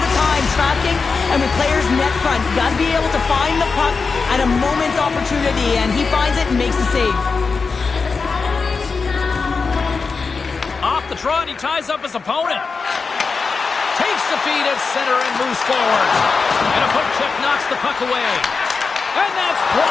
time, tracking and with players net front. You got to be able to find the puck at a moment's opportunity, and he finds it and makes the save. Off the trot, he ties up his opponent. Takes the feed at center and moves forward. And a poke check knocks the puck away. And that's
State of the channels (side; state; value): right; quieter; 4.7 dB